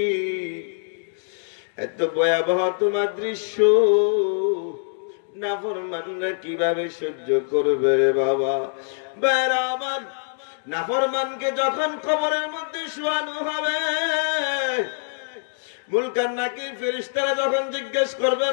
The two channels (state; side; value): silent; right; digital silence